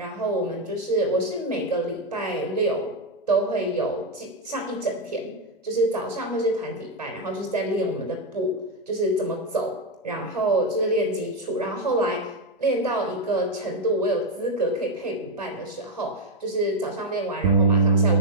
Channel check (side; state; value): both; normal; correlation 0.06